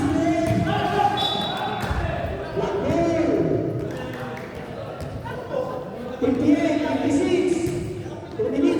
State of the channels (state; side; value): identical; both; correlation 1.00